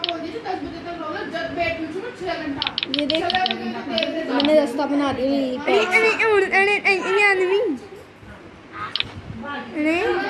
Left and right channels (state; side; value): identical; both; correlation 1.00